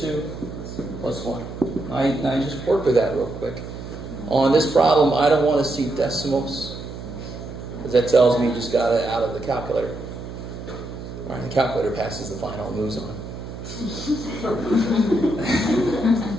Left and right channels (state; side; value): noise; right; hum, 10 dB below the sound